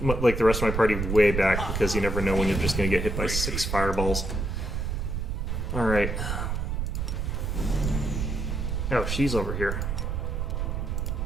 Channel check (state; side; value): noise; right; rumble, 1 dB below the sound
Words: like the rest of my party way back because you never know when you're just going to get hit by 6 fireballs. Alright. Oh, she's over here.